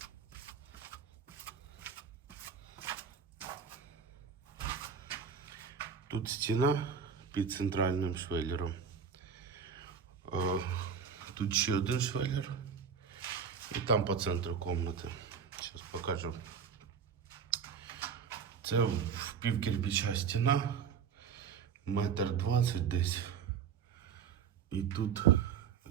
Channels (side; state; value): left; quieter; 6.7 dB